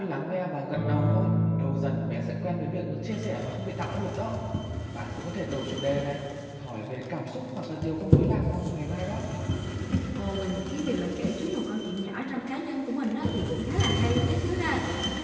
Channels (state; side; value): identical; both; correlation 1.00